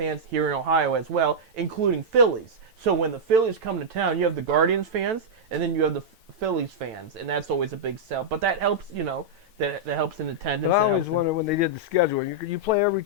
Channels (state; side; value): late; left; 9.0 ms